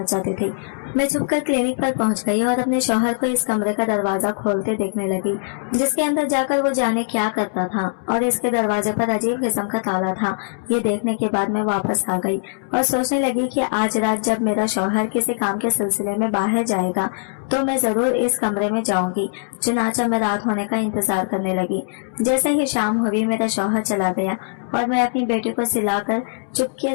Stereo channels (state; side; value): silent; right; 65 dB below the other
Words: चाहते थे। मैं छुपकर क्लिनिक पर पहुंच गई और अपने शौहर को इस कमरे का दरवाजा खोलते देखने लगी, जिसके अंदर जाकर वो जाने क्या करता था, और इसके दरवाजे पर अजीब किस्म का ताला था। ये देखने के बाद मैं वापस आ गई और सोचने लगी कि आज रात जब मेरा शौहर किसी काम के सिलसिले में बाहर जाएगा तो मैं जरूर इस कमरे में जाऊंगी। चुनाचा मैं रात होने का इंतजार करने लगी। जैसे ही शाम हुई मेरा शौहर चला गया और मैं अपनी बेटी को सिलाकर चुपके